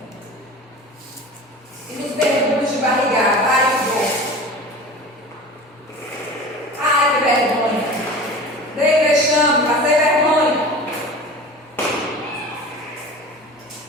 E nos mergulhos de barrigada? Ai, que bom! Ai, que vergonha! Dei vexame, passei vergonha.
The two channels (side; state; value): both; normal; correlation 0.37